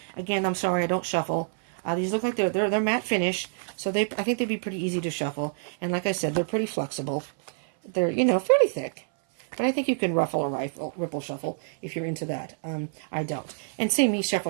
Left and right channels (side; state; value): left; silent; 58 dB below the other